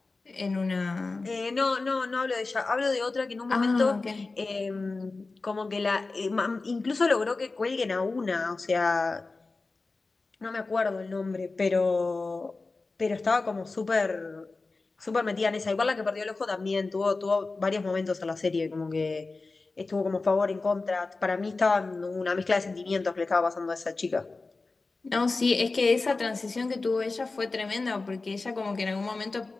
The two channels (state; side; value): quieter; right; 3.7 dB